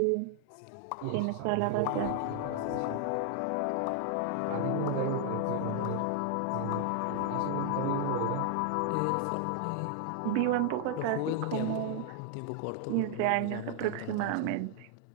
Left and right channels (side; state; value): both; different; correlation 0.00